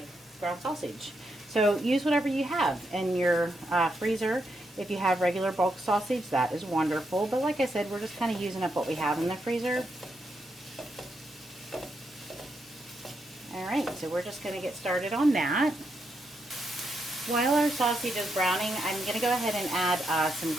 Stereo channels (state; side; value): normal; both; correlation 0.81